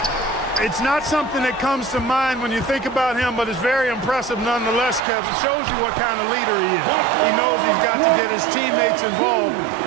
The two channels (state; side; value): drops out; left; at 5.0 s